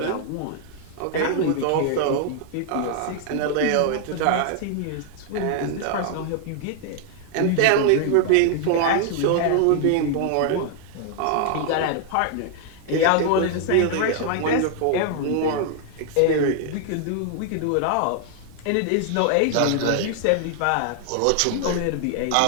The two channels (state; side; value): different; both; correlation 0.00